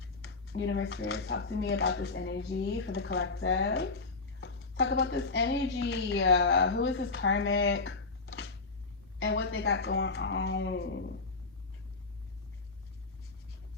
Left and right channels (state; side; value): quieter; right; 3.9 dB